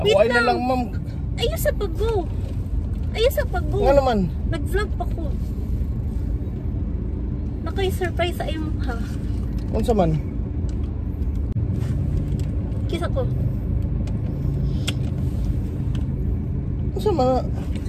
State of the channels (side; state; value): both; identical; correlation 1.00